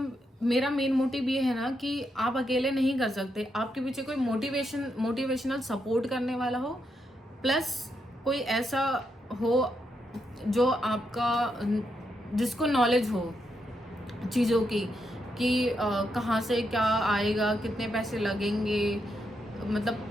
मेरा मेन मोटिव ये है ना कि आप अकेले नहीं कर सकते, आपके पीछे कोई मोटिवेशनल सपोर्ट करने वाला हो, प्लस कोई ऐसा हो जो आपका जिसको नॉलेज हो चीज़ों की कि कहाँ से क्या आएगा, कितने पैसे लगेंगे,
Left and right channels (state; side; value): normal; both; correlation 0.81